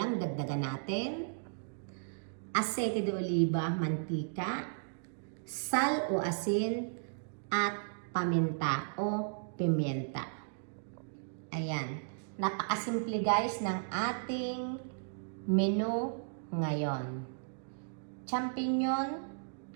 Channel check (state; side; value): silent; left; digital silence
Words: dagdagan natin, asete de oliva, mantika, sal o asin, at paminta o pimienta. Ayan, napakasimple guys ng ating menu ngayon. Champignon